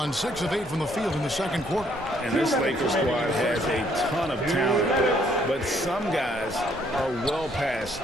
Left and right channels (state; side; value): normal; both; correlation 0.67